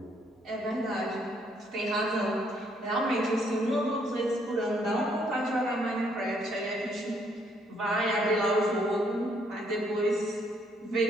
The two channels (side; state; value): both; normal; correlation 0.69